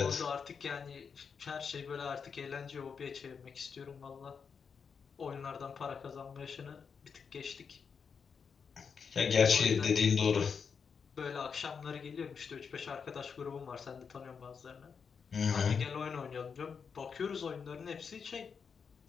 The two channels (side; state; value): right; quieter; 6.1 dB